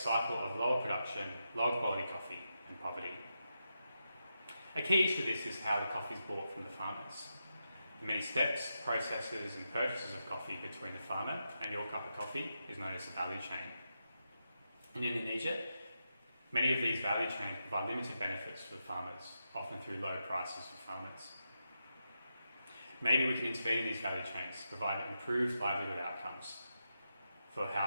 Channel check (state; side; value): inverted; both; correlation -0.87